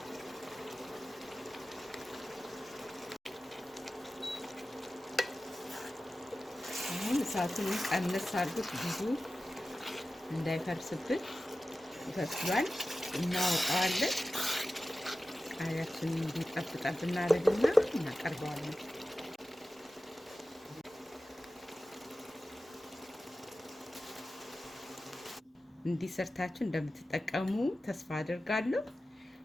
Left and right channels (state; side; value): normal; both; correlation 0.95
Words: አሁን እሳቱን ቀነስ አድርጉት፣ ብዙ እንዳይፈርስብን። ይፈስሏል፣ እናወጣዋለን። ቃሪያችንን እንዲጠብጠብ እናደርግና እናቀርበዋለን። እንዲሰርታችሁ እንደምትጠቀሙ ተስፋ አድርጋለሁ።